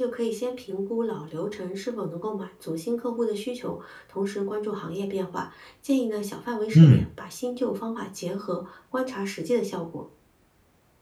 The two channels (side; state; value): both; identical; correlation 1.00